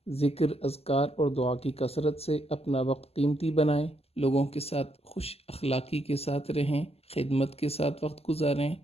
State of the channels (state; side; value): late; right; 0.29 ms